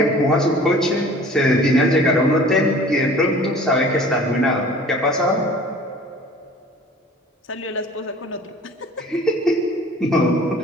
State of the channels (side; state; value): both; normal; correlation 0.47